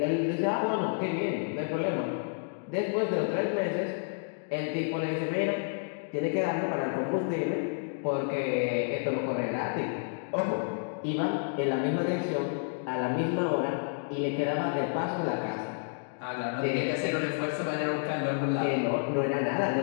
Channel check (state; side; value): silent; right; digital silence